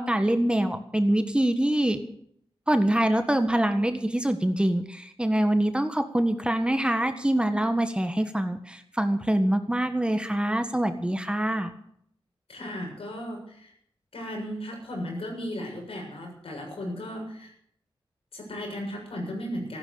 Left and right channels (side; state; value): both; normal; correlation 0.95